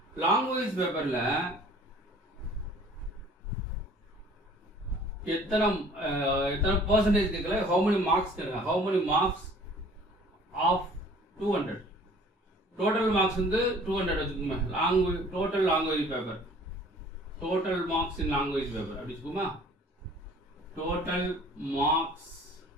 லாங்குவேஜ் பேப்பர்ல எத்தனை பர்சன்டேஜ் கேட்கல, how many marks கேட்கல, how many marks of 200. Total marks வந்து 200 வச்சுக்கோங்க. Total language paper, total marks in language paper அப்படி வச்சுக்கோமா. Total marks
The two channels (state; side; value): normal; both; correlation 0.51